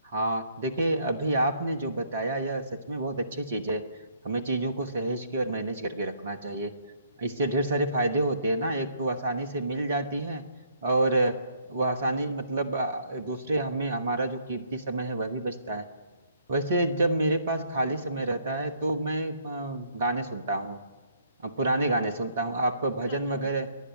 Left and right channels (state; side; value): inverted; both; correlation -0.65